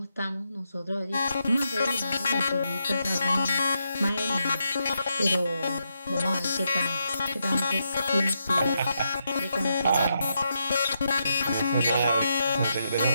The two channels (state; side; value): inverted; both; correlation -0.83